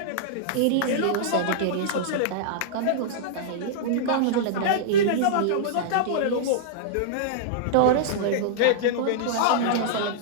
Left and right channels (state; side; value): different; both; correlation -0.02